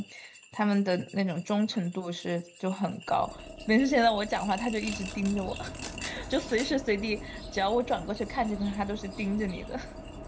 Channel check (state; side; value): identical; both; correlation 1.00